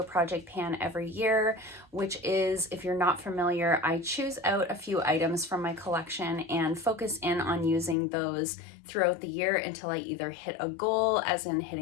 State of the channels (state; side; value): drops out; right; at 8.0 s